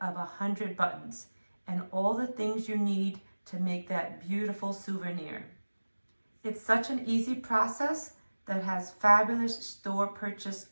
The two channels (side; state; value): both; inverted; correlation -1.00